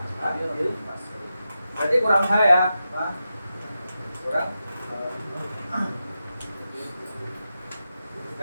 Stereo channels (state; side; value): inverted; both; correlation -0.90